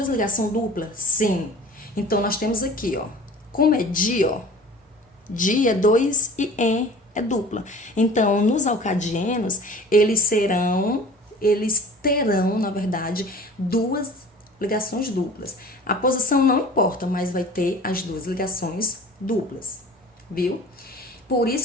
ligações duplas? Sim. Então, nós temos aqui, ó, como é di, ó, di é 2 e en é dupla. Então, nos alcadienos, eles terão, na verdade, duas ligações duplas. A posição não importa, mas vai ter as duas ligações duplas, viu? Por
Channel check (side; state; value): both; normal; correlation 0.43